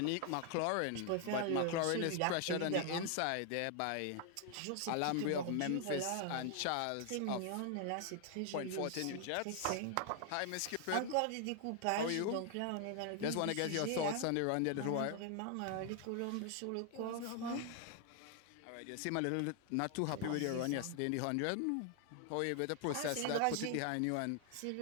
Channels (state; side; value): different; both; correlation 0.00